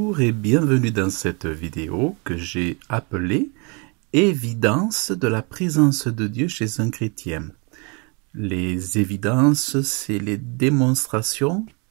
et bienvenue dans cette vidéo que j'ai appelée « Évidence de la présence de Dieu chez un chrétien ». Les évidences, c'est les démonstrations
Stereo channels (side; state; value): left; quieter; 33.0 dB